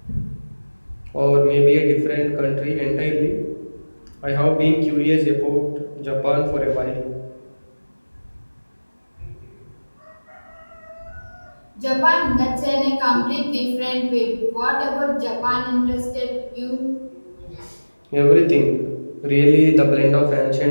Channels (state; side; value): inverted; both; correlation -1.00